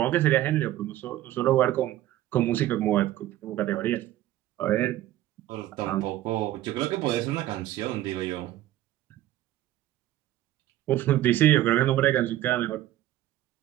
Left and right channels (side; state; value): left; quieter; 14.0 dB